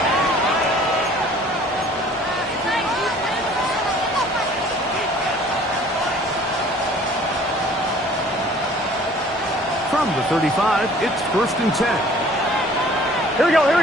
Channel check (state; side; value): normal; both; correlation 0.52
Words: From the 35, it's 1st and 10. Here we go, here